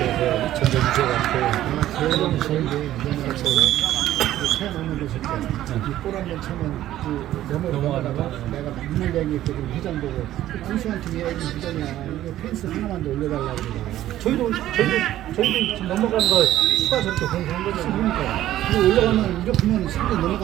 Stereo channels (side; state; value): left; quieter; 13.4 dB